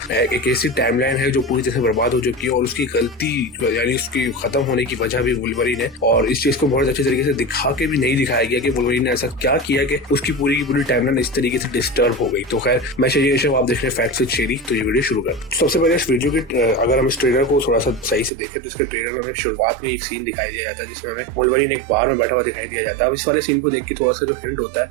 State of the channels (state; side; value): drops out; left; at 18.3 s